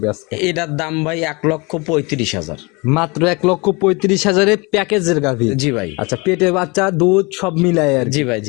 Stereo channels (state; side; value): quieter; right; 27.4 dB